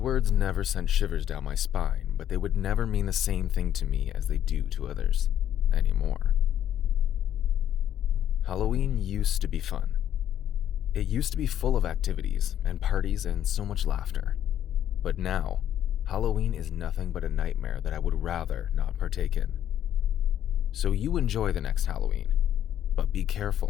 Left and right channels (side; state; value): right; quieter; 10.7 dB